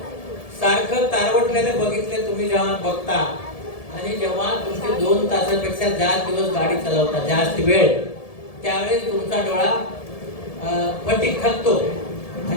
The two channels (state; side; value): late; right; 1.7 ms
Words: सारखं तारवटलेलं बघितलं तुम्ही जेव्हा बघता, आणि जेव्हा तुमचे 2 तासापेक्षा जास्त दिवस गाडी चालवता, जास्त वेळ, त्यावेळेस तुमचा डोळा फटीक थकतो.